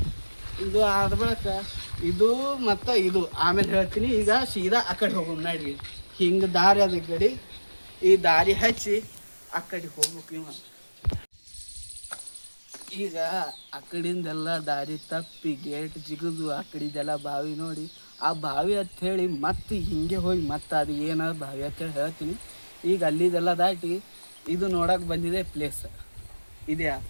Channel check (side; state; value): both; inverted; correlation -1.00